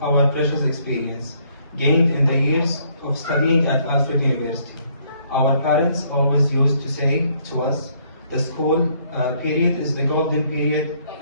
our precious experience gained in the years of studying at Alfred University. Our parents always used to say to us, the school period is the golden period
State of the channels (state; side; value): inverted; both; correlation -0.67